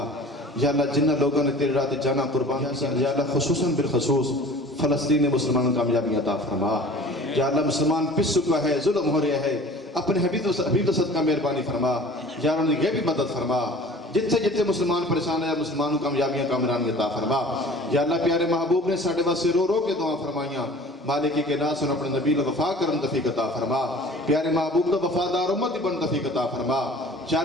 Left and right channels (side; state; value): both; normal; correlation 0.45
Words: یا اللہ جنہ لوگوں نے تیرے راہ جانا قربان کیا، یا اللہ خصوصاً بالخصوص فلسطین مسلمانوں کامیابی عطا فرما. یا اللہ مسلمان پس چکا ہے، ظلم ہو رہا ہے، اپنے حبیب دا صدقہ مہربانی فرما. یا اللہ انہیں غیبی مدد فرما. جتنے جتنے مسلمان پریشان ہے مسلمانوں کامیابیاں کامرانی عطا فرما. یا اللہ پیارے محبوب نے ساڑھے واسے رو رو کے دعا فرمائیاں. مالکی کے ناس ان اپنے نبی وفا کرن توفیق عطا فرما. پیارے محبوب دا وفادار امت بن توفیق عطا فرما. یا